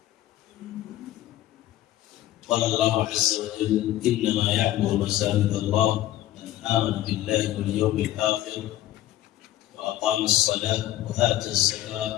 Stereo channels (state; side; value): quieter; right; 14.1 dB